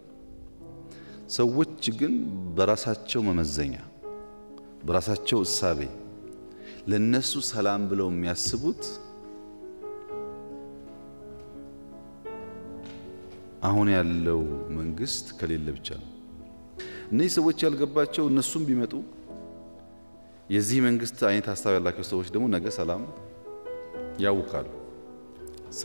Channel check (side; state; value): both; inverted; correlation -1.00